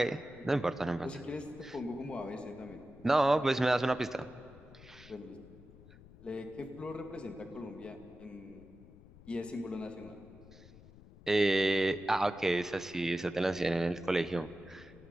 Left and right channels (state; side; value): noise; left; rumble, 21 dB below the sound